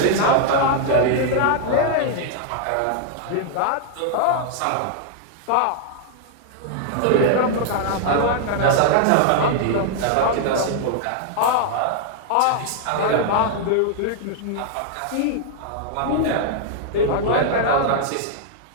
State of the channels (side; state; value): both; different; correlation -0.01